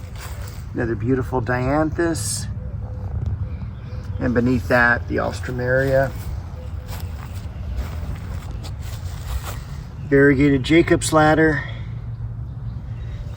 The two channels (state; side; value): identical; both; correlation 1.00